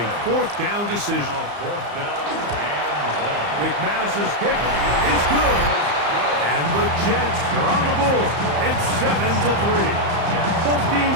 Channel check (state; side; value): late; left; 34 ms